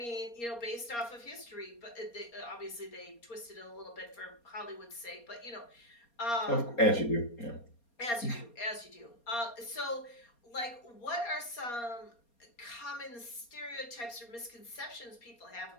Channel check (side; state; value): right; late; 4.3 ms